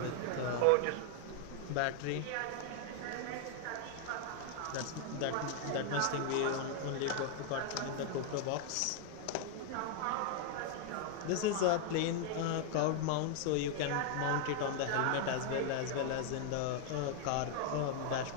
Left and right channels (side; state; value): both; different; correlation 0.00